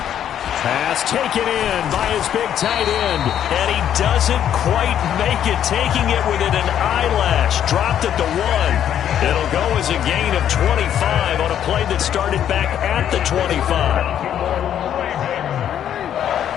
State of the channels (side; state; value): right; quieter; 10.0 dB